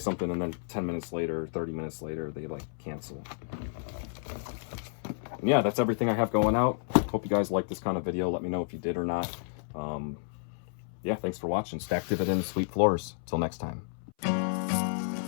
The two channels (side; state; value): right; silent; 57 dB below the other